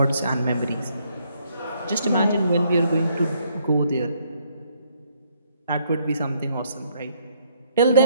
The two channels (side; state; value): both; inverted; correlation -0.69